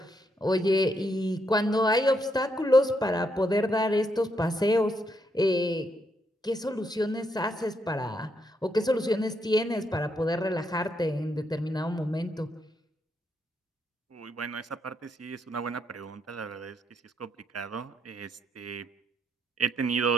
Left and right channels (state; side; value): normal; both; correlation 0.77